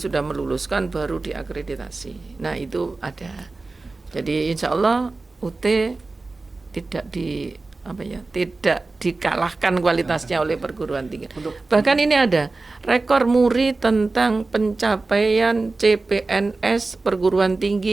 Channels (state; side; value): quieter; left; 3.5 dB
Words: sudah meluluskan baru diakreditasi. Nah itu ada. Jadi insya Allah UT tidak dikalahkan kualitasnya oleh perguruan tinggi. Bahkan ini ada rekor muri tentang pencapaian CPNS perguruan